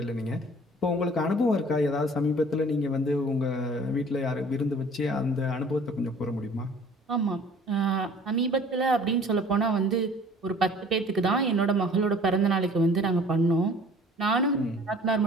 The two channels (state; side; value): normal; both; correlation 0.50